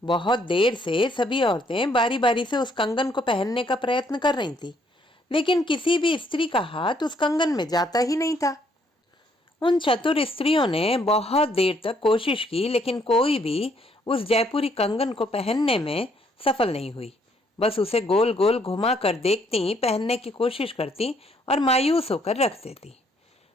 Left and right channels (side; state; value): both; normal; correlation 0.68